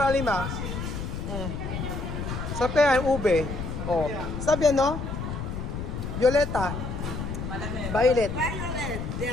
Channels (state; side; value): noise; left; rumble, 5 dB below the sound